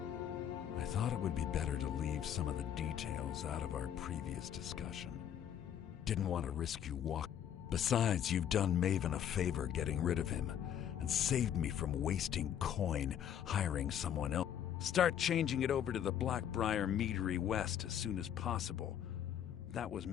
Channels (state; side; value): quieter; right; 9.6 dB